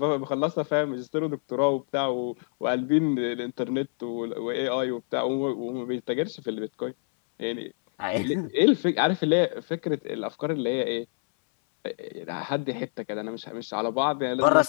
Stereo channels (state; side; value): silent; right; 60 dB below the other